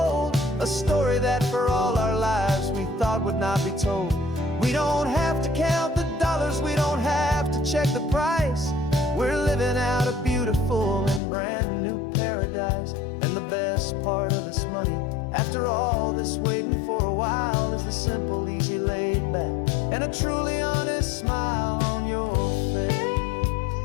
a story that for all our lives we thought would not be told. We don't have to count the dollars, we don't have to check the price. We're living out a beautiful and brand new paradise. And the best part of this money, after all this waiting for a while, is the simple, easy, laid back, and a truly honest smile on your face.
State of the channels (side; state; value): right; drops out; at 11.2 s